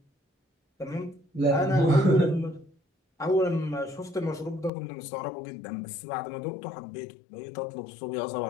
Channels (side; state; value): right; drops out; at 4.7 s